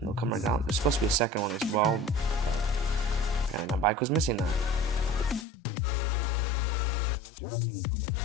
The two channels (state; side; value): drops out; right; at 5.5 s